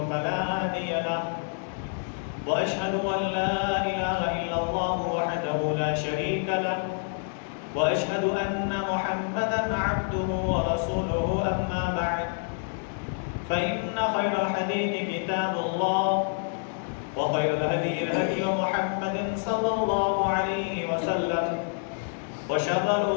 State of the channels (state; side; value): silent; right; 60 dB below the other